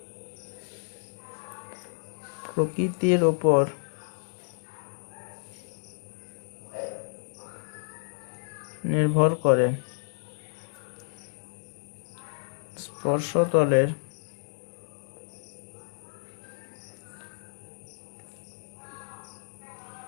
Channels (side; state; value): right; silent; digital silence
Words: প্রকৃতির উপর নির্ভর করে। স্পর্শতলের